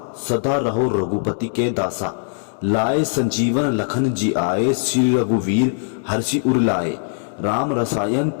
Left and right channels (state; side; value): silent; right; digital silence